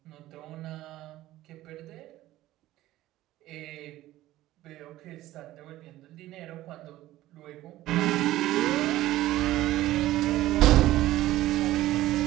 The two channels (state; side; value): quieter; left; 15.5 dB